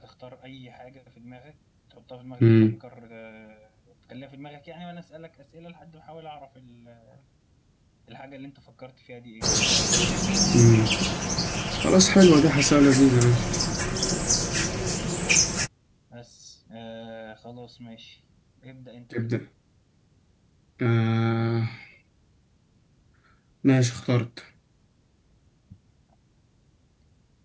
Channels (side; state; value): both; identical; correlation 1.00